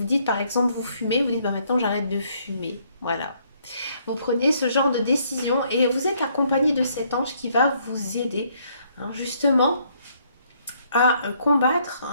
dites par exemple vous fumez, vous dites maintenant j'arrête de fumer. Voilà. Vous prenez ce genre de décision et vous êtes accompagné de cet ange qui va vous aider justement à combattre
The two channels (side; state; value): both; inverted; correlation -0.68